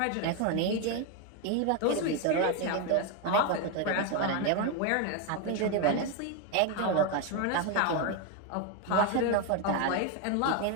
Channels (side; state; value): both; different; correlation 0.02